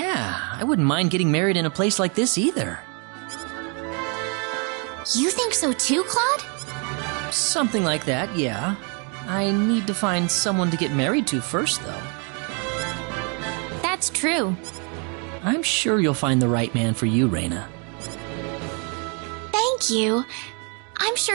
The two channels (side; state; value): left; quieter; 36.4 dB